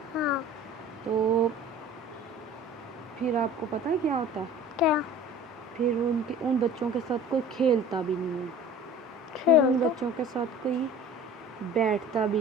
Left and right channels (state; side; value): normal; both; correlation 0.43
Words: تو پھر آپ کو پتہ ہے کیا ہوتا ہے؟ کیا؟ پھر ان بچوں کے ساتھ کوئی کھیلتا بھی نہیں ہے, پھر ان بچوں کے ساتھ کوئی بیٹھتا